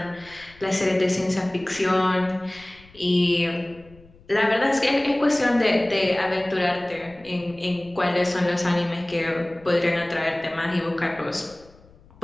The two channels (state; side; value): noise; left; rumble, 26 dB below the sound